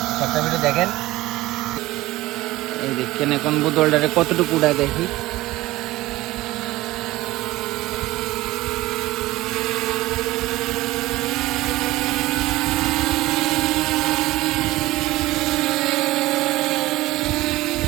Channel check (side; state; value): left; quieter; 18.1 dB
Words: সবটা ভিডিও দেখেন। এই দেখেন এখন বোতলটারে কতটুকু উঠায় দেখি।